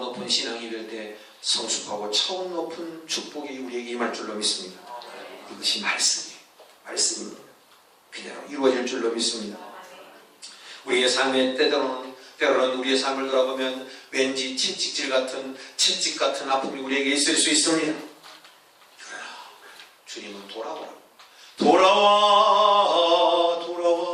높은 신앙이 될 때 성숙하고 차원 높은 축복이 우리에게 임할 줄로 믿습니다. 이것이 말씀입니다. 그대로 이루어질 줄로 믿습니다. 우리의 삶에 때로는 우리의 삶을 돌아보면 왠지 채찍질 같은 아픔이 우리에게 있을 수 있습니다. 그러나 주님은 돌아와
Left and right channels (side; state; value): both; identical; correlation 1.00